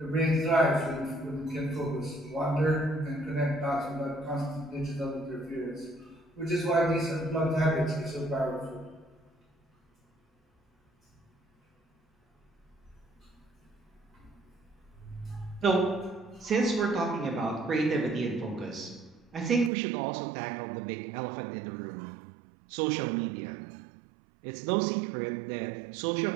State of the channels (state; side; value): drops out; left; at 19.7 s